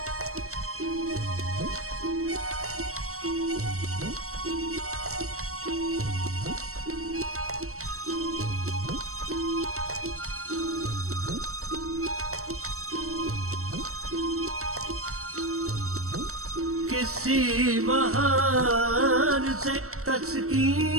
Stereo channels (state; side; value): late; left; 0.64 ms